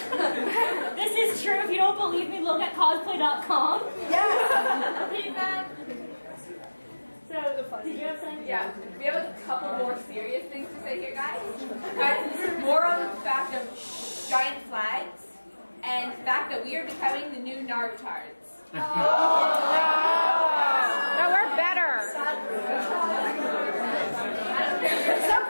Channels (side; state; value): both; inverted; correlation -1.00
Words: This is true. If you don't believe me, look at cosplay.com. Yeah. So, did you have something? Yeah, we have a couple more serious things to say here, guys. More on the fact of giant flags and the fact that we are becoming the new Narutards. No, we're better.